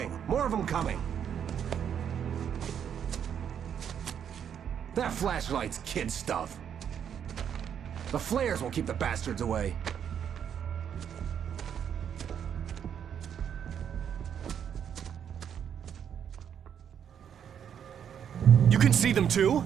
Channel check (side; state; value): left; quieter; 8.5 dB